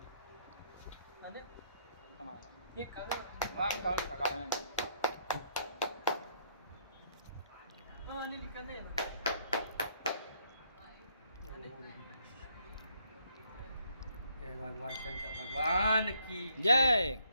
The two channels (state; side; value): inverted; both; correlation -0.69